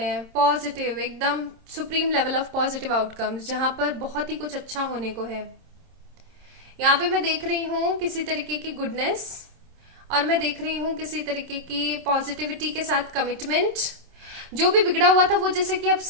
हैं, पॉजिटिव एकदम supreme level of positive outcomes, जहां पर बहुत ही कुछ अच्छा होने को है। यहाँ पे मैं देख रही हूँ किसी तरीके की गुडनेस, और मैं देख रही हूँ किसी तरीके की पॉजिटिविटी के साथ कमिटमेंट। जो भी बिगड़ा हुआ था वो जैसे कि अब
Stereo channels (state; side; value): late; left; 26 ms